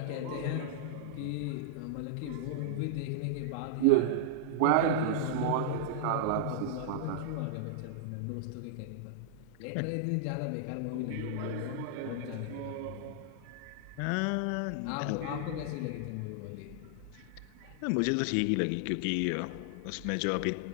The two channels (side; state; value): both; different; correlation -0.01